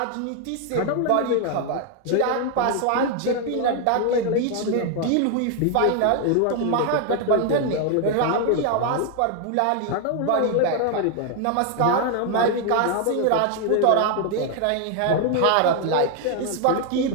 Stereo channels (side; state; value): both; different; correlation 0.00